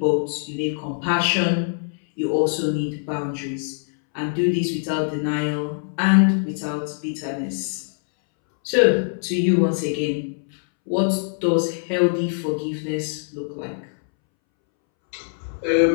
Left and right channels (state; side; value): silent; right; 63 dB below the other